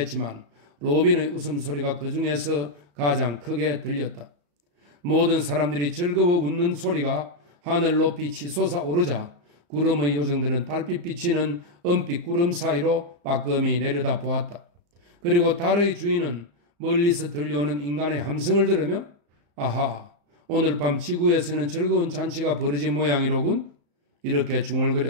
로빈의 웃음소리가 그 중에서 가장 크게 들렸다. 모든 사람들이 즐거워 웃는 소리가 하늘 높이 치솟아 오르자 구름의 요정들은 달빛 비치는 은빛 구름 사이로 빠끔히 내려다 보았다. 그리고 달의 주인은 멀리서 들려오는 인간의 함성을 들으며 아하, 오늘 밤 지구에서는 즐거운 잔치가 벌어진 모양이로군. 이렇게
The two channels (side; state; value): left; late; 35 ms